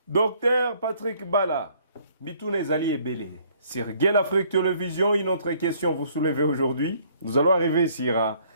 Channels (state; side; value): inverted; both; correlation -0.62